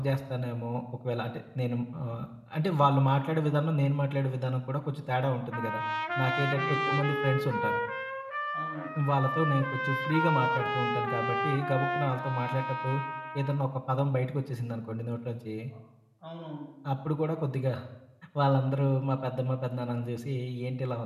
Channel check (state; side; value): identical; both; correlation 1.00